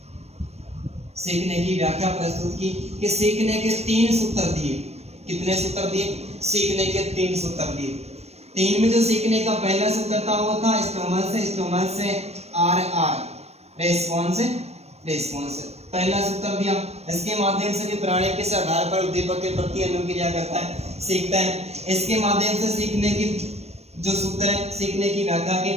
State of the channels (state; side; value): late; left; 0.31 ms